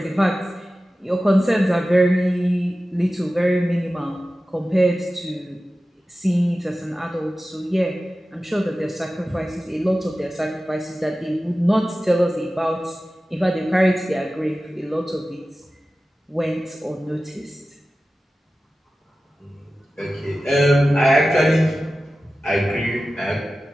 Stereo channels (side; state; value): both; normal; correlation 0.95